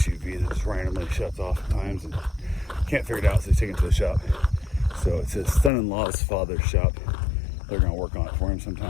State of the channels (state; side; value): drops out; right; at 5.7 s